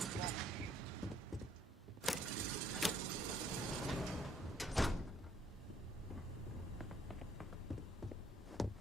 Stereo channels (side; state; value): both; normal; correlation 0.65